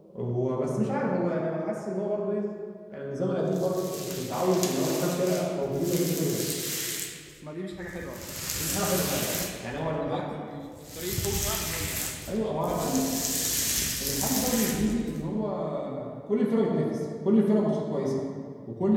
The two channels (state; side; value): identical; both; correlation 1.00